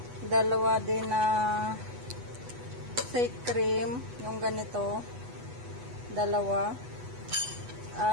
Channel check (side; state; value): left; late; 8.1 ms